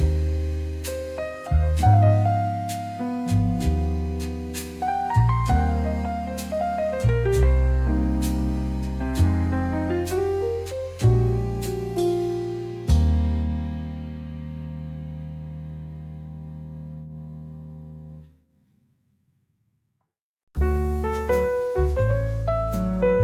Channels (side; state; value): both; identical; correlation 1.00